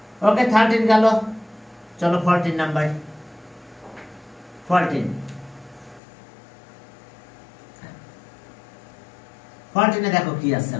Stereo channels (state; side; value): drops out; right; at 6.0 s